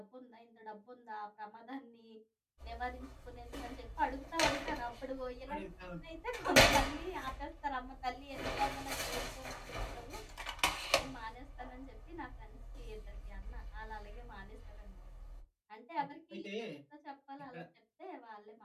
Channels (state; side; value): identical; both; correlation 1.00